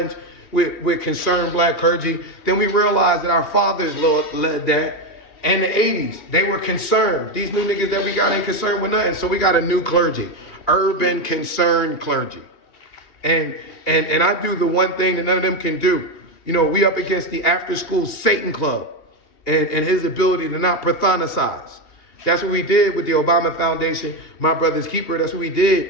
with concerned black clergy, then we realize that our fathers led that. And the 80s, they were concerned. These new niggas that we got ain't concerned with nothing. So we got a new clergy, urban concerned clergy. And I do the one thing that none of them can do. You know, we up against the after school Satan Club and his ability to not pathonicize. That's what we did with the Obama Foundation, My Brother's Keeper. That's what we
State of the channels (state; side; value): late; right; 2.6 ms